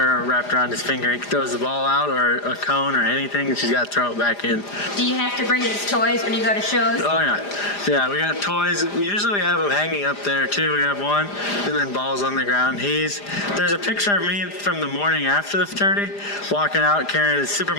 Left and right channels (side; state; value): right; late; 4.9 ms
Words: wrapped around his finger. He throws the ball out or a cone or anything, and she's got to throw it back in. Do you have to bring his toys when you go to shows? Oh, yeah. Yeah, we got toys. Usually we have them hanging up there, too. We have one, and then balls on the ground. There's a picture of me from the morning after the fraternity, walking out carrying his Super